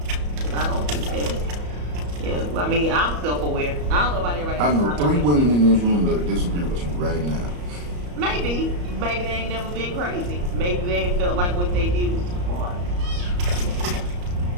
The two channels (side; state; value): left; late; 34 ms